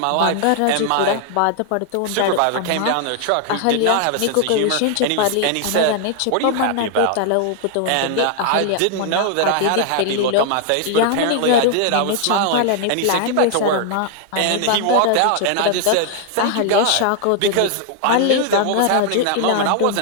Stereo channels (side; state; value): both; different; correlation 0.00